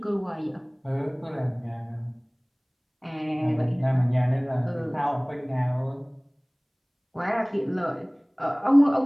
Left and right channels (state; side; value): identical; both; correlation 1.00